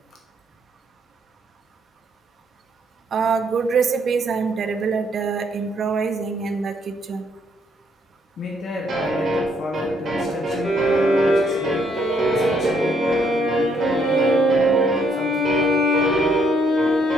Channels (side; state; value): both; normal; correlation 0.70